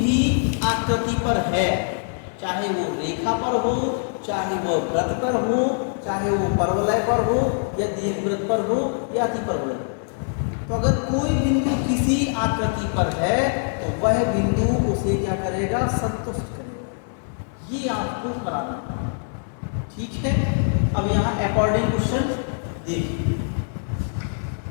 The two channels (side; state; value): right; silent; 63 dB below the other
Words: आकृति पर है, चाहे वो रेखा पर हो, चाहे वो वृत्त पर हो, चाहे वो परवलय पर हो या दीर्घवृत्त पर हो या अतिपरवलय। तो अगर कोई बिंदु किसी आकृति पर है तो वह बिंदु उसे क्या करेगा, संतुष्ट करेगा। ये आपको कराना है, ठीक है। अब यहाँ अकॉर्डिंग क्वेश्चन देखिए।